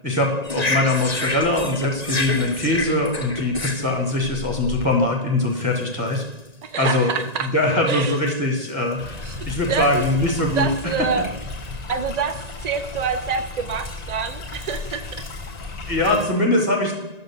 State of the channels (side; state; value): left; late; 1.9 ms